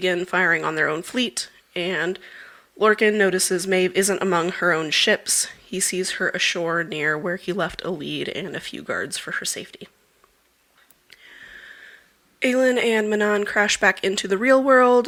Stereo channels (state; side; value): identical; both; correlation 1.00